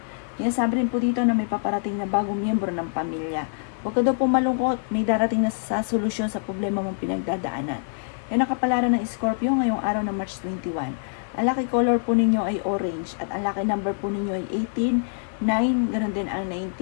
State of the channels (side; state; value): right; silent; 62 dB below the other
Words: Yan sabi rin po dito na may paparating na bagong miyembro ng pamilya. Huwag ka daw po malungkot, may darating na sa solusyon sa problema mong pinagdadaanan. Yan ang kapalaran ng Scorpio ngayong araw ng March 21. Ang lucky color po ninyo ay orange at ang lucky number po ninyo ay 18, 9, ganun din ang